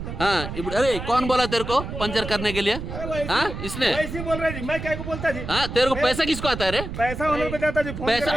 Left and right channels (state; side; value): noise; right; rumble, 7 dB below the sound